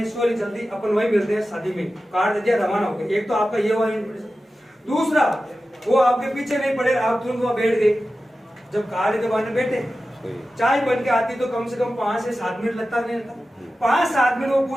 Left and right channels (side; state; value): both; normal; correlation 0.94